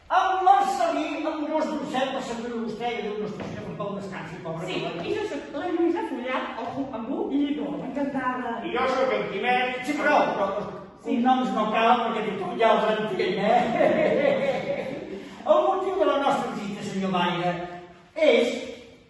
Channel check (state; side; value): identical; both; correlation 1.00